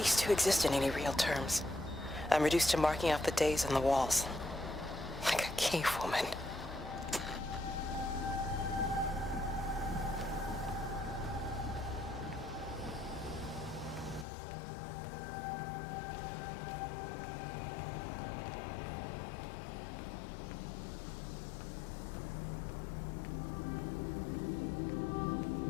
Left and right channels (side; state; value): right; drops out; at 14.2 s